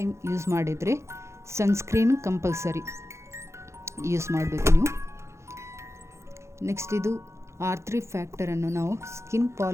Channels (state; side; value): late; left; 0.14 ms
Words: ಯೂಸ್ ಮಾಡಿದರೆ ಸನ್ಸ್ಕ್ರೀನ್ ಕಂಪಲ್ಸರಿ ಯೂಸ್ ಮಾಡಬೇಕು ನೀವು. ನೆಕ್ಸ್ಟ್ ಇದು R3 ಫ್ಯಾಕ್ಟರನ್ನು ನಾವು ಸ್ಕಿನ್